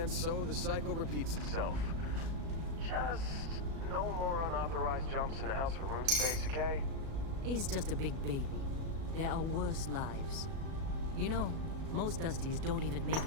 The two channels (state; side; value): late; left; 37 ms